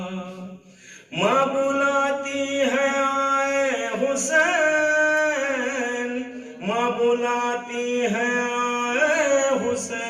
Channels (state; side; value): identical; both; correlation 1.00